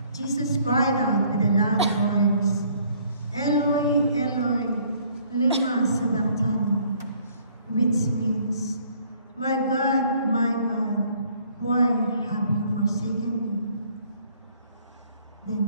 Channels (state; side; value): inverted; both; correlation -0.61